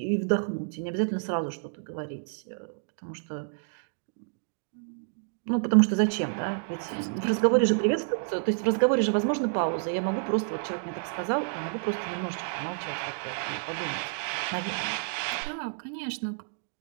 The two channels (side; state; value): left; silent; digital silence